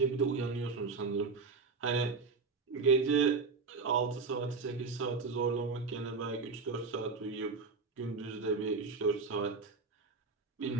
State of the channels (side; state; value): left; quieter; 4.5 dB